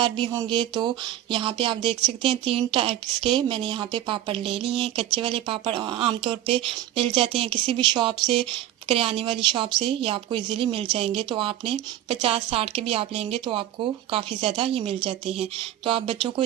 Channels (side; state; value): left; quieter; 12.6 dB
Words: भी होंगे। तो यहाँ पे आप देख सकते हैं 3 टाइप्स के मैंने यहाँ पे पापड़ ले लिए हैं। कच्चे वाले पापड़ आमतौर पे मिल जाते हैं किसी भी शॉप से, करियाने वाली शॉप से, ये आपको इजीली मिल जाएंगे। तो आपने 50-60 के भी आप लेंगे तो आपको काफ़ी ज़्यादा ये मिल जाते हैं। तो आप बच्चों को